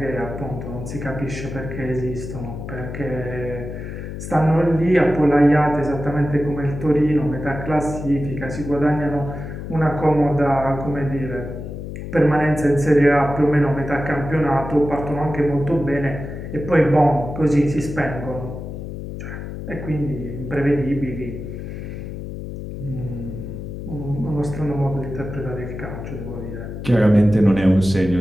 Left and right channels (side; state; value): left; noise; hum, 8 dB below the sound